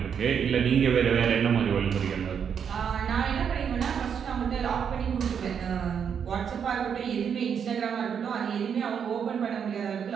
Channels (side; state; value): left; quieter; 7.5 dB